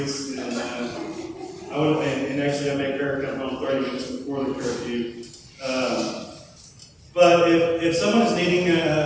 And actually I make her come home 30 minutes before the curfew. But if someone is needing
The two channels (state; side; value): identical; both; correlation 1.00